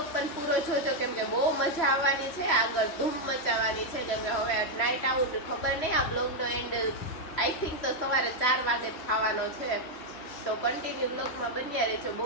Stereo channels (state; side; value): late; right; 3.0 ms